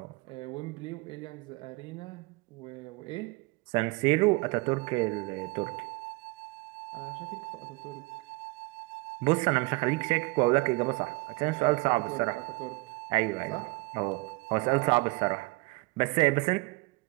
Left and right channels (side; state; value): left; quieter; 25.4 dB